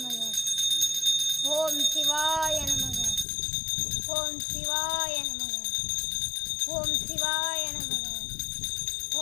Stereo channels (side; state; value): right; drops out; at 3.2 s